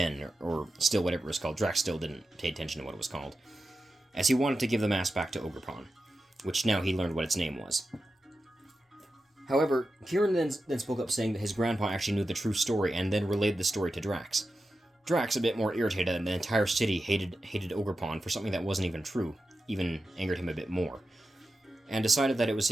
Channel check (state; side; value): normal; both; correlation 0.91